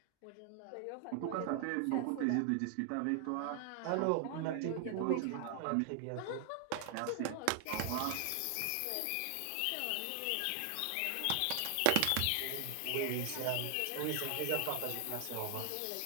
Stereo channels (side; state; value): both; different; correlation 0.00